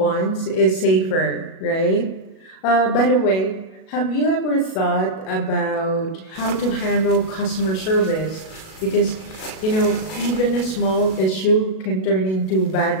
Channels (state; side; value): late; right; 37 ms